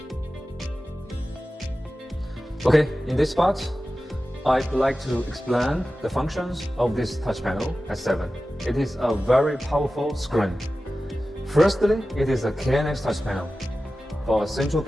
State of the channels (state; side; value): normal; both; correlation 0.95